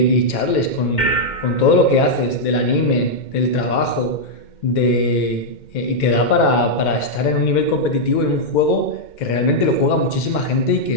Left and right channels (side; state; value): right; late; 2.1 ms